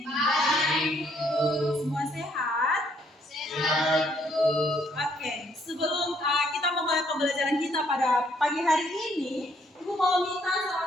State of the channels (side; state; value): both; normal; correlation 0.68